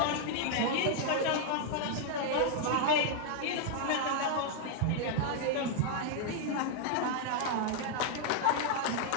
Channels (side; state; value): both; different; correlation 0.00